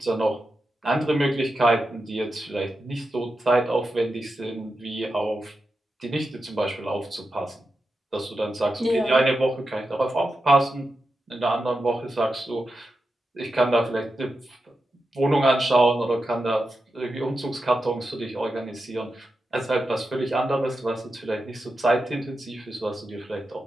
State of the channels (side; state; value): both; normal; correlation 0.89